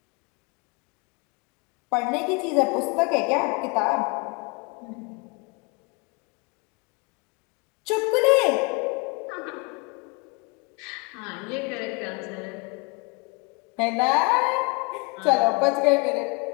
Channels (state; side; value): quieter; right; 29.2 dB